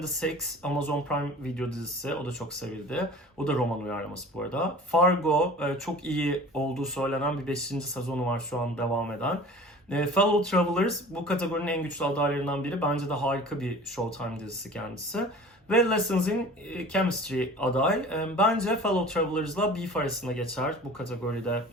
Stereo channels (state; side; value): normal; both; correlation 0.42